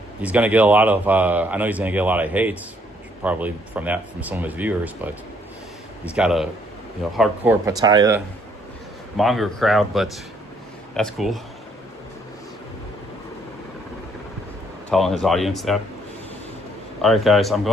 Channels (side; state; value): both; normal; correlation 0.67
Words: He's gonna get a lot of I know he's gonna get a lot of hate, probably from some of his viewers, but he's got a hardcore Pattaya manga crowd, but that's cool. Telling his audience that. All right, guys, I'm